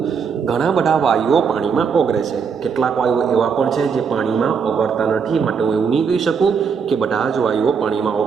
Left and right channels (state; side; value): quieter; left; 6.2 dB